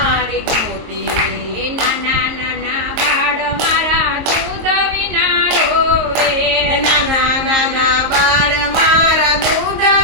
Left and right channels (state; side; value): late; left; 23 ms